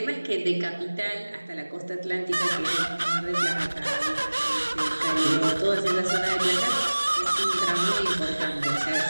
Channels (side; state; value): both; inverted; correlation -1.00